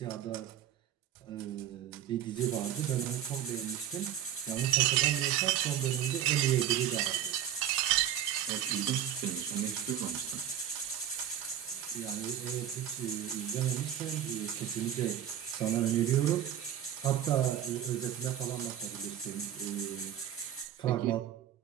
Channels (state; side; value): quieter; left; 10.3 dB